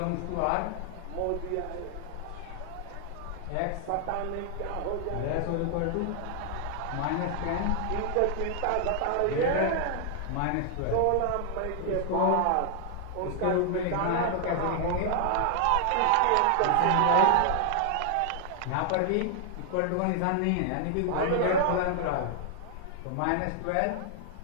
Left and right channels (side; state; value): both; different; correlation 0.00